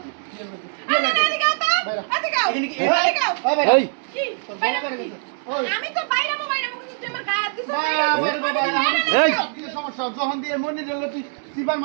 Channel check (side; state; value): left; silent; 64 dB below the other